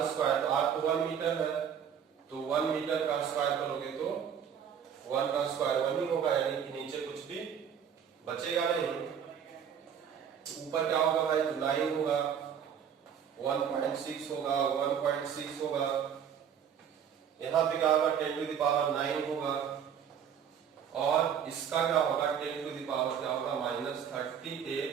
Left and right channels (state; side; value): quieter; left; 8.2 dB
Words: स्क्वायर, तो R तो 1 मीटर है, तो 1 मीटर का स्क्वायर करोगे तो 1 का स्क्वायर 1 ही होगा, यानी कि नीचे कुछ भी बचेगा नहीं। ऊपर क्या होगा भाई, तो 9 होगा, 1.6 होगा, 1.6 होगा, यहाँ पे क्या होगा, 10⁻9 होगा, और इसका क्या होगा, 10⁻ क्या होगा,